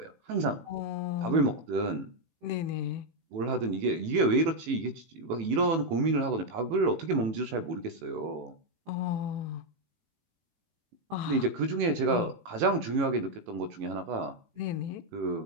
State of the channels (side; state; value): left; late; 18 ms